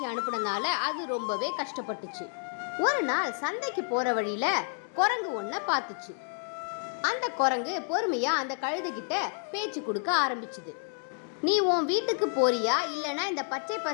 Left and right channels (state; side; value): silent; right; 58 dB below the other